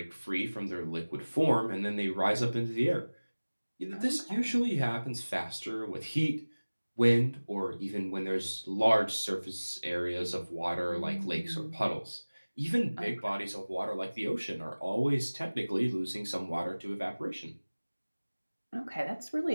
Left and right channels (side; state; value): both; inverted; correlation -1.00